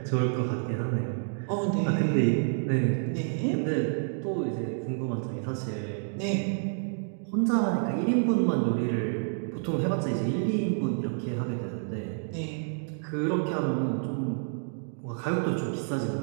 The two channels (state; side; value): silent; left; digital silence